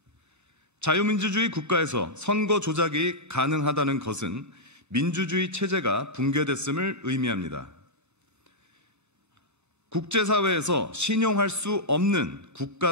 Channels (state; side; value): late; left; 1.0 ms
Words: 자유민주주의 국가에서 선거 조작이 가능하다는 것은 민주주의 체제가 붕괴됐음을 의미합니다. 국제사회에서 신용할 수 없는